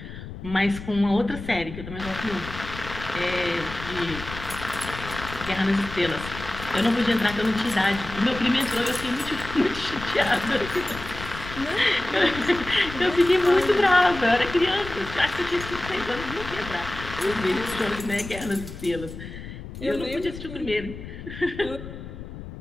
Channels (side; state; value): left; noise; rumble, 11 dB below the sound